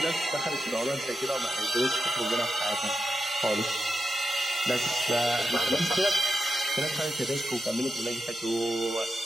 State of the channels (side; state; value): both; normal; correlation 0.88